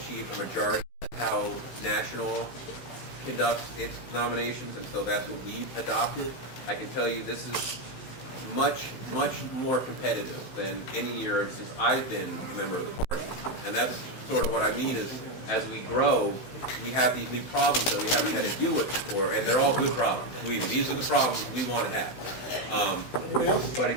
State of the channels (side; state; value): right; late; 16 ms